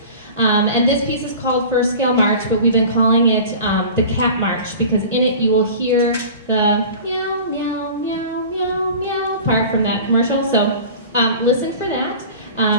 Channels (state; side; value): inverted; both; correlation -0.39